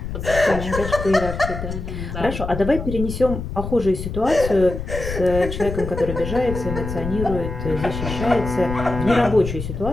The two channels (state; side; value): noise; left; rumble, 6 dB below the sound